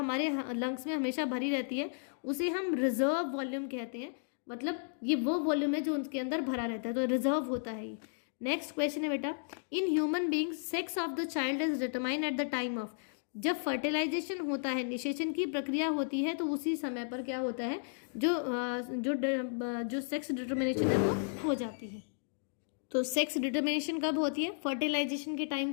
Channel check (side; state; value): right; silent; digital silence